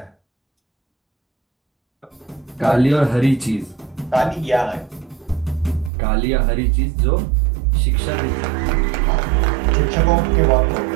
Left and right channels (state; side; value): drops out; left; at 5.9 s